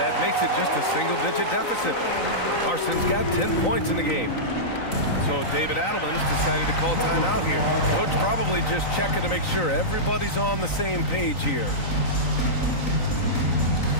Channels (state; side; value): late; right; 3.9 ms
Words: that makes it just a single-digit deficit. Larson's got 10 points in the game. So David Adelman's decided to call timeout here. Coach probably just checking to make sure everybody's on the same page here.